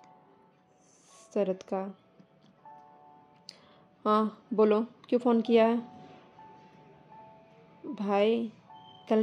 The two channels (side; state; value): both; identical; correlation 1.00